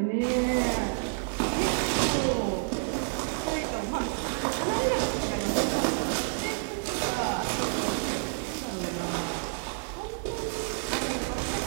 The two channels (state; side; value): silent; left; digital silence